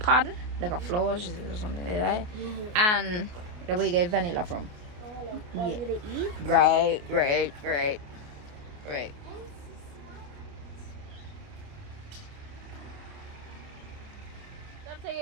like a flower or something like that. And that's where you get vanilla from. Yeah. Right. Them take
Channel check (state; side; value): late; left; 28 ms